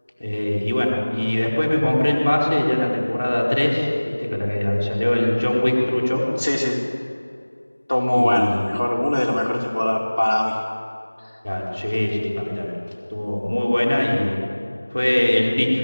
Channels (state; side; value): inverted; both; correlation -1.00